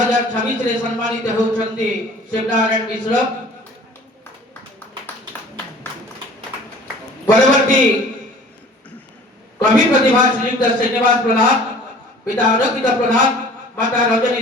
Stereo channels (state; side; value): normal; both; correlation 0.48